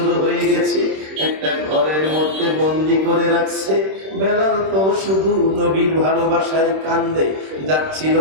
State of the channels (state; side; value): late; left; 26 ms